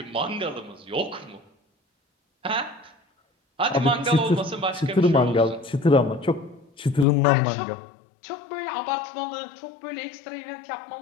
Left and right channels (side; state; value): right; drops out; at 7.1 s